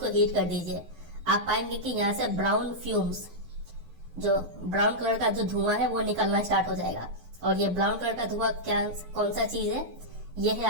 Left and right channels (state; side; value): late; left; 12 ms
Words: हीट कर दीजिए। आप पाएंगे कि यहाँ से ब्राउन फ्यूम्स, जो ब्राउन कलर का जो धुआं है वो निकलना स्टार्ट हो जाएगा। और ये ब्राउन कलर का धुआं क्या, कौन सा चीज है? ये है